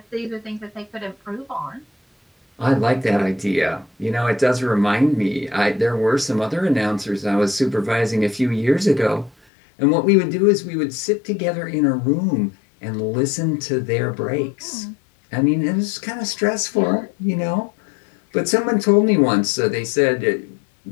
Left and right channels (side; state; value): right; drops out; at 9.3 s